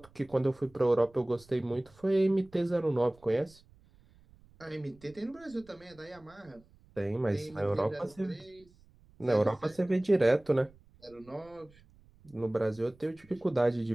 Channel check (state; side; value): noise; right; rumble, 27 dB below the sound